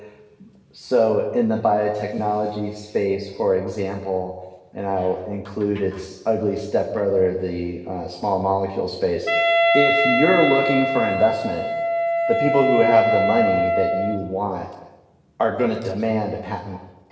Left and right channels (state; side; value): identical; both; correlation 1.00